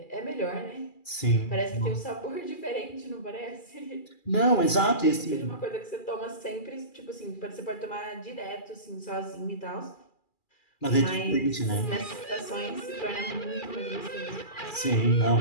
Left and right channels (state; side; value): late; right; 2.4 ms